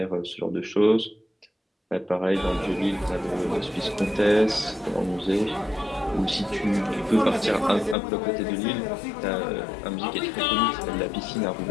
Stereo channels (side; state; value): right; drops out; at 8.0 s